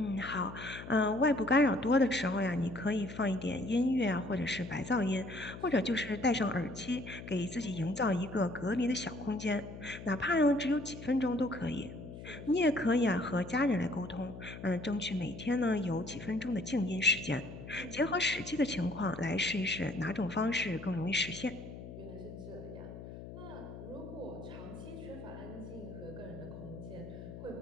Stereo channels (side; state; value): left; noise; hum, 12 dB below the sound